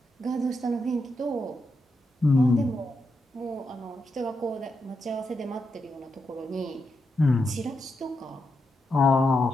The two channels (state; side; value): normal; both; correlation 0.85